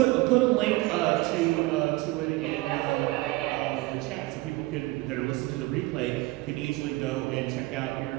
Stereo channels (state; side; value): quieter; left; 20.7 dB